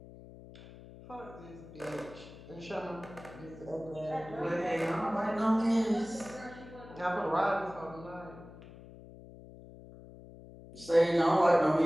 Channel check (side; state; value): left; noise; hum, 18 dB below the sound